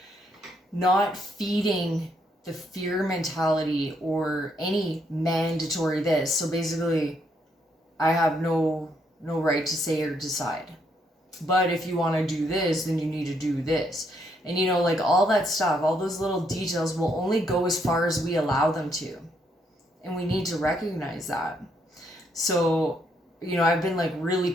not feeding the fear mentality or any mandatory this. So basically, I have no right to say or decide. But if you want to do this, then you need to do this. And, you know, like all that stuff, all those little details will only go as far as we allow them to. And we need to recognize that. So, you know, I've been like really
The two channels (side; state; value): both; normal; correlation 0.74